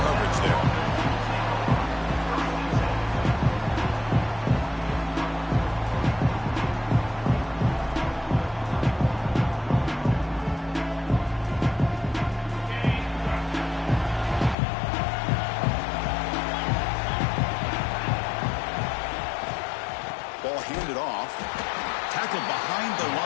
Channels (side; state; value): right; drops out; at 14.6 s